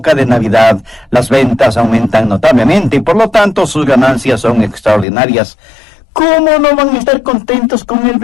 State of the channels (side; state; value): right; drops out; at 5.1 s